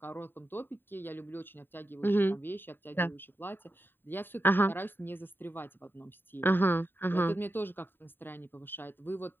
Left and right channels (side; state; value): right; late; 0.096 ms